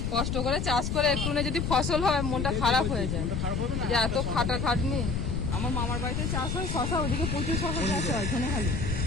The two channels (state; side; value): noise; left; rumble, 1 dB below the sound